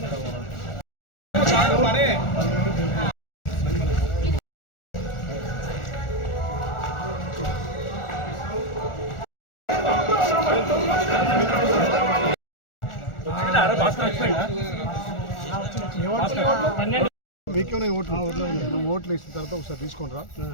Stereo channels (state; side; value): late; right; 1.4 ms